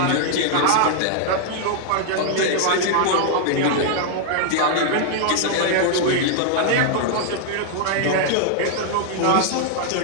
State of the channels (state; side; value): different; both; correlation 0.00